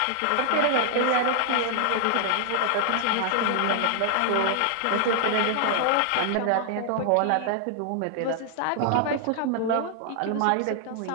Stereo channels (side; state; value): both; different; correlation 0.00